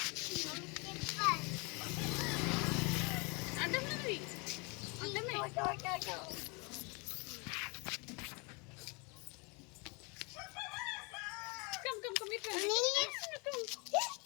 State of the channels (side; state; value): right; quieter; 30.6 dB